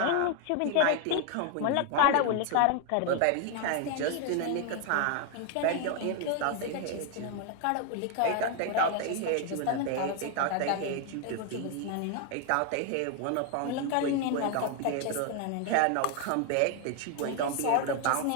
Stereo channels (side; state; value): both; different; correlation 0.01